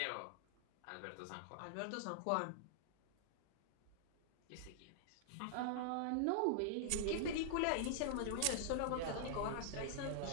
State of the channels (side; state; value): both; different; correlation -0.01